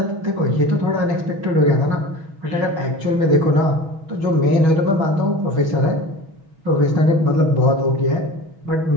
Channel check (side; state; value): left; late; 6.2 ms